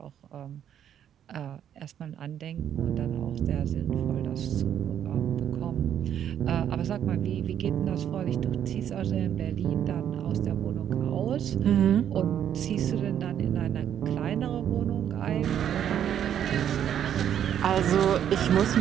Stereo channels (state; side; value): quieter; left; 9.7 dB